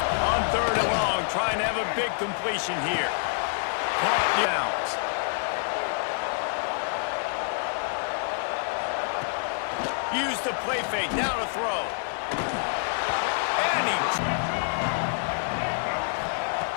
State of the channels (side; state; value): right; silent; digital silence